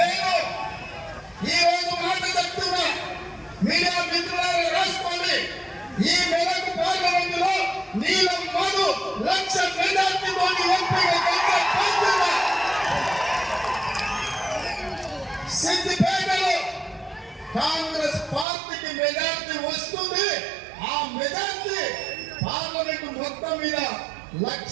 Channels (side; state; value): left; drops out; at 18.4 s